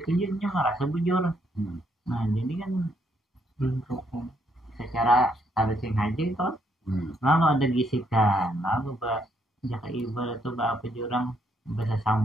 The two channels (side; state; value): both; normal; correlation 0.73